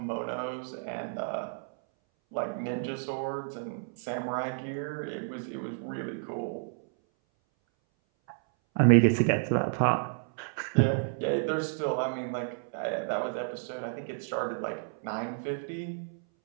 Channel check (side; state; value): left; silent; 57 dB below the other